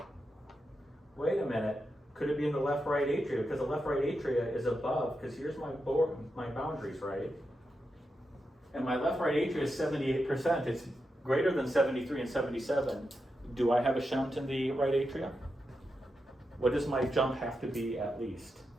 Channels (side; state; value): both; normal; correlation 0.87